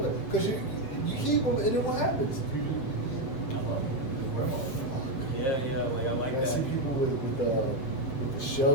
back because you keep them, and then what happens? I love them. Wear them all the time. Yeah. Like I like that. I see people with the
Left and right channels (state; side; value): late; right; 7.4 ms